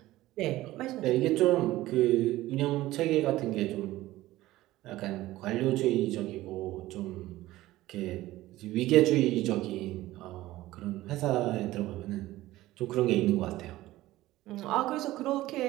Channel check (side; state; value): left; quieter; 16.6 dB